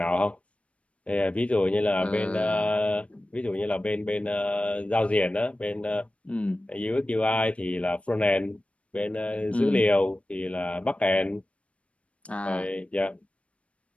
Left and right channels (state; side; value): late; right; 0.063 ms